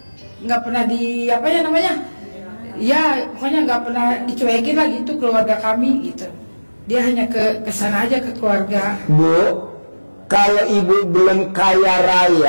di apa ya namanya? Ya pokoknya nggak pernah dicuekin lah gitu keluarga kami gitu. Dia hanya ke sana aja ke keluarga. Bu, kalau ibu belum kaya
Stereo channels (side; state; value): both; inverted; correlation -1.00